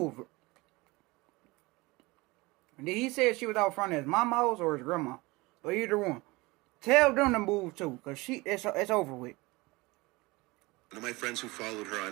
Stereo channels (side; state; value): left; quieter; 22.8 dB